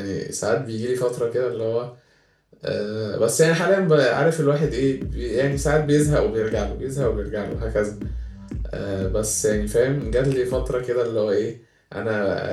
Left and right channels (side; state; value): both; identical; correlation 1.00